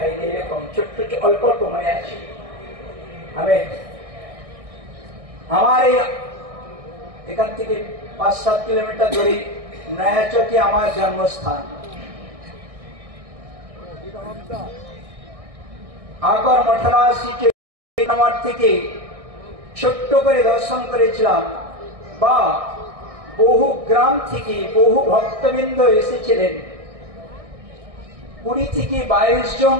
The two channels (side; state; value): left; late; 1.6 ms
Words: হয়নি এরকম ছোট্ট অল্প অল্প মনে আছে। আমি আমার এখান থেকে 5-7 কিলোমিটার দূরে নয়াচকে আমার জন্মস্থান। আকর 88 থেকে ছোট্ট করে দর্শন করেছিলাম, বা বহু গ্রাম থেকে বহু ভক্তবৃন্দ এসেছিলেন। 20 থেকে 22 জন